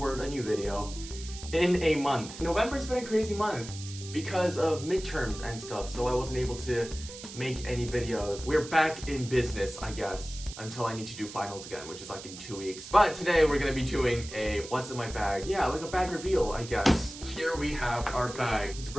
a new video in a month. November's been a crazy month because of midterms and stuff, so I wasn't able to make any videos. We're back in business, I guess, until I need to do finals again, which is like in 2 weeks. But today we're gonna be doing a what's in my bag. Yeah, like a bag reveal, I guess. Here we have our bag. It's a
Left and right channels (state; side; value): noise; right; hiss, 13 dB below the sound